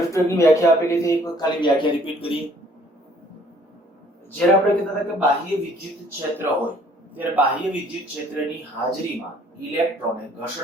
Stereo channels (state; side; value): normal; both; correlation 0.59